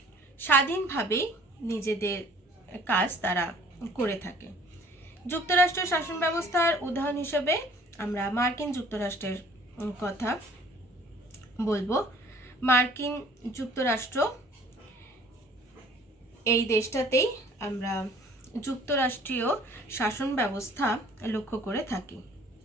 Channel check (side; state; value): both; normal; correlation 0.53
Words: স্বাধীনভাবেই নিজেদের কাজ তারা করে থাকে। যুক্তরাষ্ট্রীয় শাসন ব্যবস্থার উদাহরণ হিসেবে আমরা মার্কিন যুক্তরাষ্ট্রের কথা বলবো। মার্কিন যুক্তরাষ্ট্র, এই দেশটাতেই আমরা যুক্তরাষ্ট্রীয় শাসন ব্যবস্থা লক্ষ্য করে থাকি।